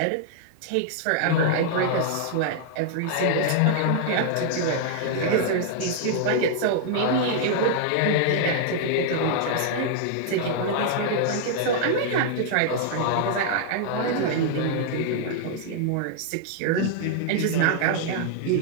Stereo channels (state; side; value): different; both; correlation -0.01